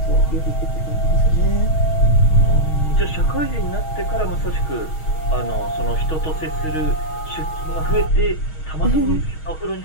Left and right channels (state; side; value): late; right; 6.3 ms